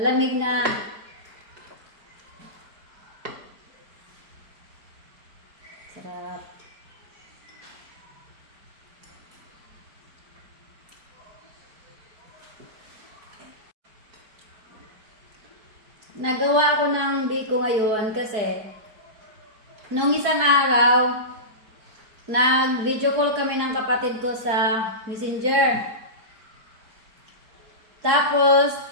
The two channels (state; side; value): late; left; 4.7 ms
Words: na. Sarap. Nagawa ko ng biko ngayon kasi nung isang araw, nag-video call kami ng kapatid ko sa Messenger. Tapos,